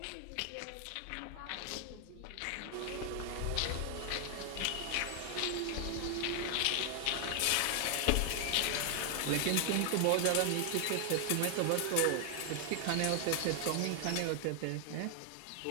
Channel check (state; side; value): different; both; correlation 0.00